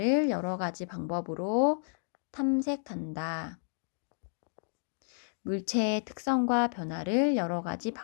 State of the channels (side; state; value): right; silent; digital silence